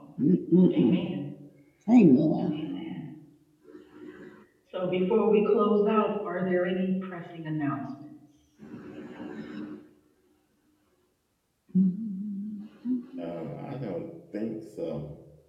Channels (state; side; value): identical; both; correlation 1.00